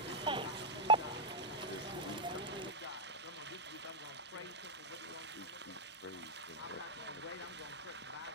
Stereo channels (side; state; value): both; normal; correlation -0.04